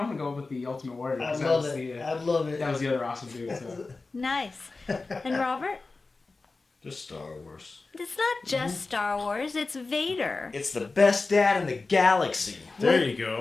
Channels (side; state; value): right; quieter; 3.7 dB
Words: gonna go with the Ultimate Warrior. I 'cause that love was it. the, I love it. that was the other awesome dude. So. Nice. And Robert? Just Star Wars. It's not just Star Wars, it's Vader. It's the best dad in the galaxy. There you